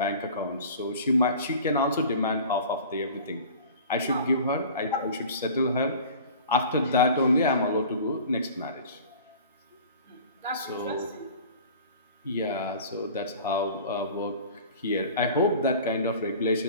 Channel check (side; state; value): both; inverted; correlation -0.42